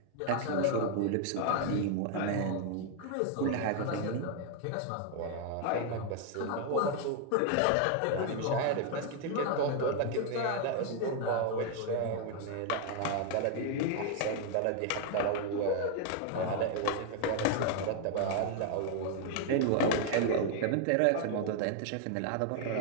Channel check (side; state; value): both; different; correlation 0.00